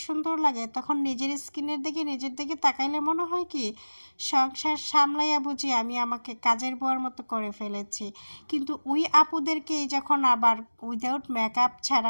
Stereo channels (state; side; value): inverted; both; correlation -1.00